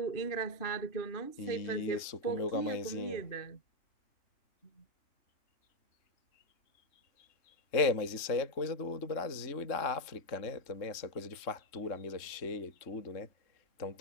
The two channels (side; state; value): right; late; 3.6 ms